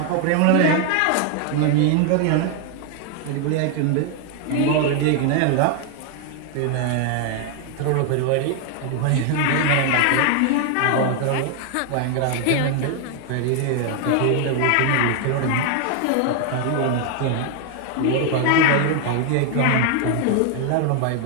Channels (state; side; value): different; both; correlation 0.00